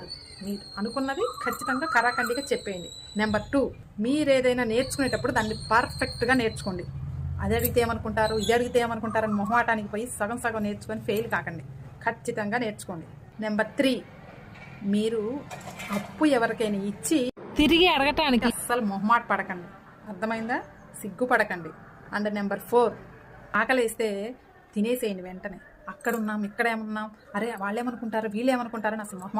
మీరు అనుకున్నది ఖచ్చితంగా కరాఖండిగా చెప్పేయండి. నెంబర్ 2, మీరు ఏదైనా నేర్చుకునేటప్పుడు దాన్ని పర్ఫెక్ట్గా నేర్చుకోండి. అది అడిగితే ఏమనుకుంటారు, ఇది అడిగితే ఏమనుకుంటారు అని మొహమాటానికి పోయి సగం సగం నేర్చుకొని ఫెయిల్ కాకండి, ఖచ్చితంగా నేర్చుకోండి. నెంబర్ 3, మీరు అప్పు ఎవరికైనా ఇచ్చి తిరిగి అడగటానికి అస్సలు మొహమాట పడకండి, అర్థమైందా? సిగ్గుపడకండి. అండ్ నెంబర్ 4, ఆకలేస్తే తినేసేయండి వెంటనే. అక్కడున్నాం ఇక్కడేమున్నాం, అరే వాళ్ళేమనుకుంటారు వీళ్ళేమనుకుంటారని అసలు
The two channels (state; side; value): identical; both; correlation 1.00